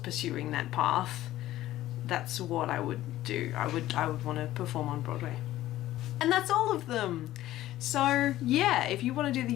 that path, that's what I would do. I would want to perform on Broadway. And that's all of them. So yeah, if you want to do the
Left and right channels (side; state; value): right; quieter; 14.7 dB